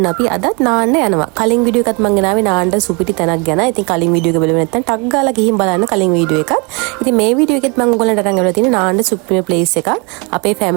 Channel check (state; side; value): quieter; left; 31.1 dB